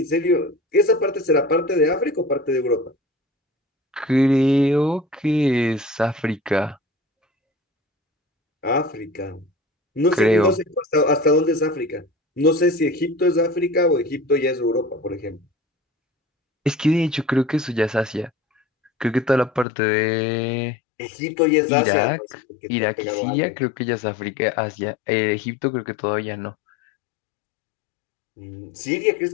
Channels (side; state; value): right; drops out; at 19.7 s